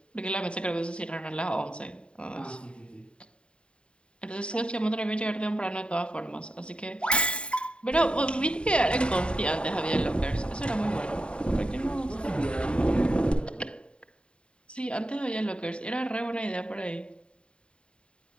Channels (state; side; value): late; right; 0.054 ms